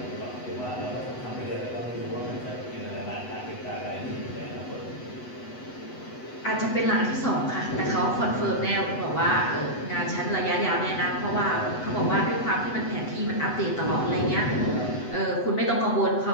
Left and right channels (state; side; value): late; right; 8.0 ms